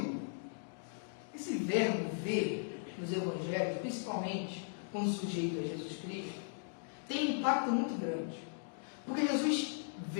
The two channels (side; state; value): right; silent; digital silence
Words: esse verbo ver nos evangelhos, principalmente quando sujeito a Jesus Cristo, tem um impacto muito grande. Porque Jesus